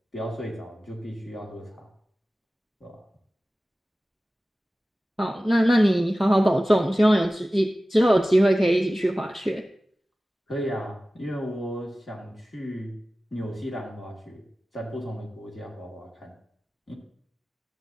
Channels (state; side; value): normal; both; correlation 0.96